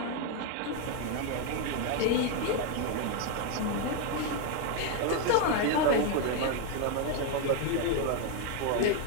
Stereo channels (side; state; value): both; different; correlation 0.01